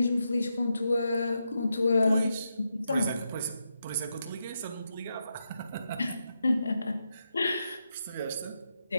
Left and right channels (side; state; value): both; inverted; correlation -0.85